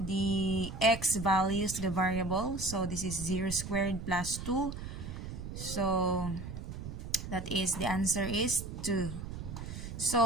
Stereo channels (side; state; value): right; noise; rumble, 8 dB below the sound